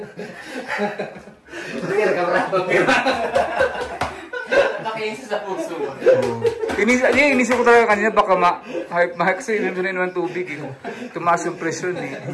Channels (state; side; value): identical; both; correlation 1.00